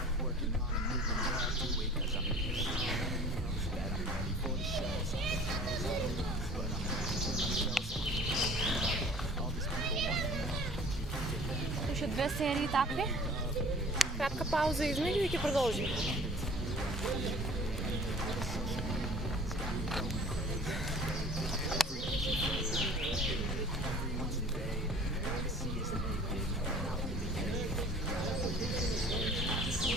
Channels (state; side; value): normal; both; correlation 0.47